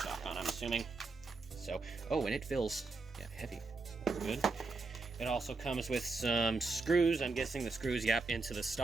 on, I'm assuming. So, oh, and it feels, yeah, heavy. So that's good. It also comes with some screws. I'm guessing the screws, yep, into the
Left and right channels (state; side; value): quieter; left; 3.7 dB